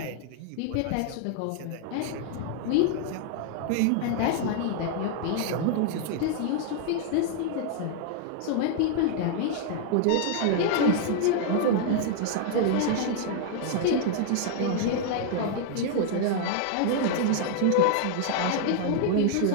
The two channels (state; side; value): different; both; correlation -0.01